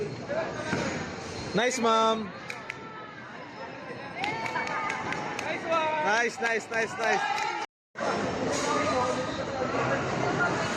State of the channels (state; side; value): identical; both; correlation 1.00